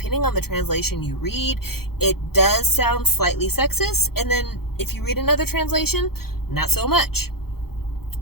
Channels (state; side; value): late; right; 0.95 ms